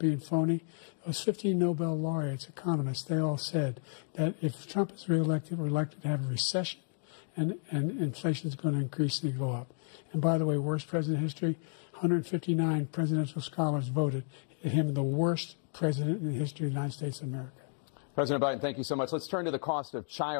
phony, those 15 Nobel laureates, economists, they all said that if Trump is reelected, we're likely to have a recession and inflation is going to increasingly go up. And by the way, worst president in history, 159 presidential scholars voted him the worst president in the history of the United States of America. President Biden, thank you so much. Let's turn to the cost of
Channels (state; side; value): silent; right; 56 dB below the other